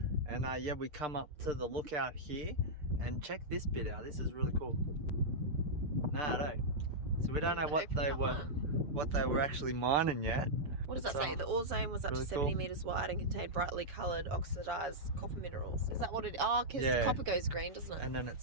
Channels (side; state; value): left; late; 6.6 ms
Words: And yeah, we come up to the lookout here. And check this bit out. This is really cool. Nah, no. So we don't know what they were actually mining yet. What does that say? The ore zone was up to 70 metres wide and contained brightly coloured oxidised copper minerals. Is that what it is? Oh, because copper goes green, doesn't it? And then it